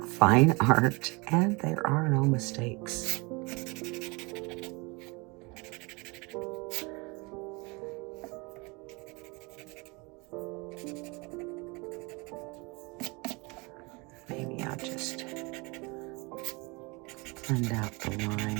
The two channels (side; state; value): left; quieter; 27.5 dB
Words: fine art, and there are no mistakes. just blend out the